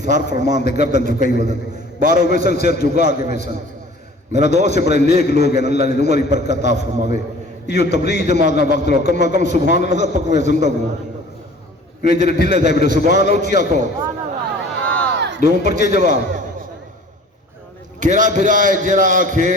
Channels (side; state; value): both; normal; correlation 0.48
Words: سار فرمان دے گردن جھکائی ودن، باروں ویسن سر جھکا کے ویسن۔ میرا دوست سے بڑے نیک لوگ ہیں، اللہ نے عمری برکت عطا فرماوے۔ یہ تبلیغ جماعت نہ وقت لو کم کم سبحان اللہ پکوے زندہ ہوں، یہ جڑے ڈھلے تھے بیٹے سبحان اللہ اچھی آکھو، دو پرچے جواب کیرا پھرا ہے جرا آکھے